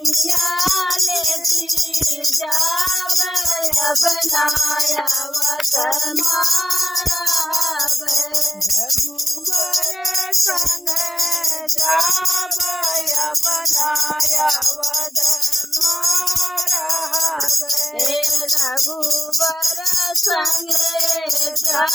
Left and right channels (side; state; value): both; normal; correlation 0.91